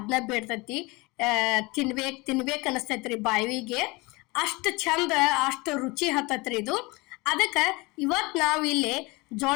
ಬೇಡ್ತತಿ, ತಿನ್ಬೇಕ್ ಅನಸ್ತೈತ್ರಿ ಬಾಯಿಗೆ. ಅಷ್ಟು ಚಂದ, ಅಷ್ಟು ರುಚಿ ಹತ್ತತ್ರಿ ಇದು. ಅದಕ್ಕೆ ಇವತ್ತು ನಾವು ಇಲ್ಲಿ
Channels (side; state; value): right; quieter; 24.5 dB